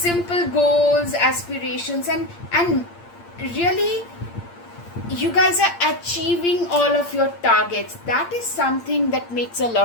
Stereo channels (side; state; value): right; late; 8.7 ms